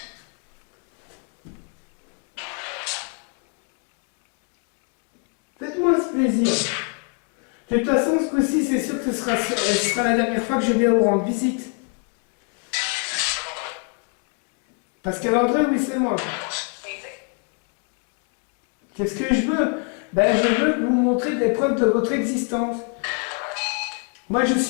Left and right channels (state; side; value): quieter; right; 38.8 dB